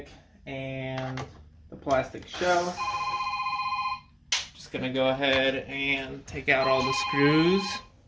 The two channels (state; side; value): identical; both; correlation 1.00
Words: and the plastic shell. Just gonna go ahead and take out all the screws.